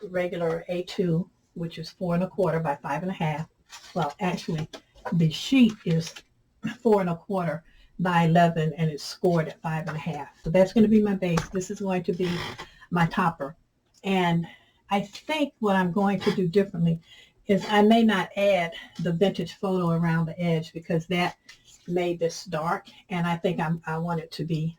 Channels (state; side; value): identical; both; correlation 1.00